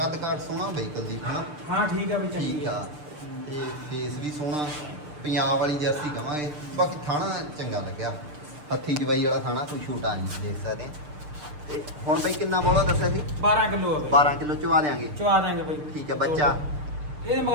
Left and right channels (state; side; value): late; left; 6.7 ms